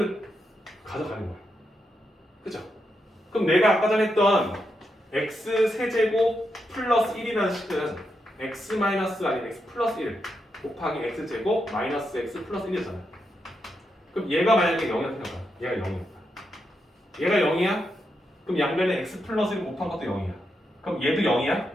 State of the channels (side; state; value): both; normal; correlation 0.84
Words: 가져가는 거야. 그죠? 그럼 내가 아까 전에 했던 x 세제곱 플러스 1이라는 식은 x 마이너스 아니면 x 플러스 1 곱하기 x제곱 마이너스 x 플러스 1이잖아. 그럼 얘가 만약에 0이라고 생각해봐. 얘가 0이었다. 얘가 0이야? 그럼 양변에 x 플러스 1 곱한 것도 0이야. 그럼 얘도 0이야?